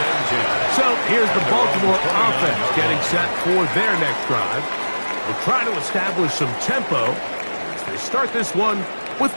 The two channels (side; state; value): both; inverted; correlation -1.00